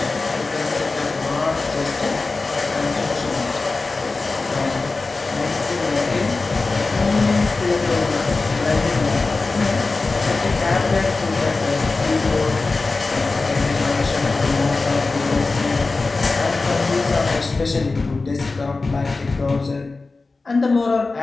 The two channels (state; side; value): quieter; right; 3.7 dB